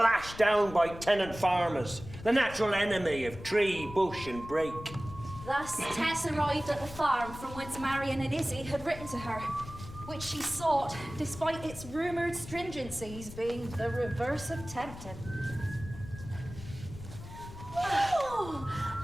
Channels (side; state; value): left; noise; rumble, 13 dB below the sound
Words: down by tenant farmers, the natural enemy of tree, bush and brake. Thus, Tess arrived at the farm from whence Marion and Izzy had written to her, which she sought, despite its rumoured stringencies being the reverse of tempting. Oh,